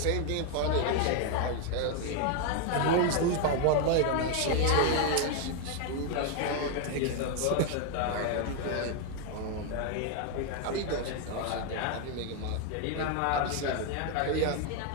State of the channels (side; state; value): both; different; correlation 0.01